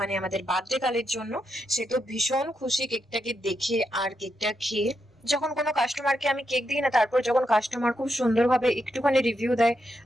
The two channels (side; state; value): both; normal; correlation 0.83